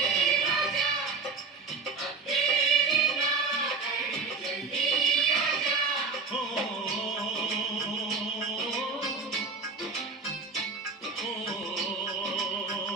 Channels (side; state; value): left; quieter; 4.6 dB